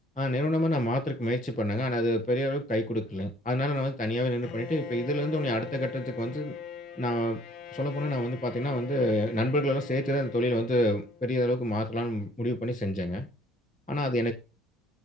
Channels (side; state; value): both; normal; correlation 0.60